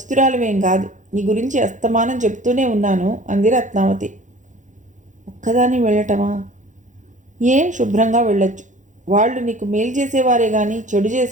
కాదు. నీ గురించి అస్తమానం చెప్తూనే ఉన్నాను అంది రత్నావతి. ఒక్కదాన్ని వెళ్ళటమా? శుభ్రంగా వెళ్ళొచ్చు. వాళ్ళు నీకు మేలు చేసేవారే కానీ చెడు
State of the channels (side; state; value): left; late; 0.36 ms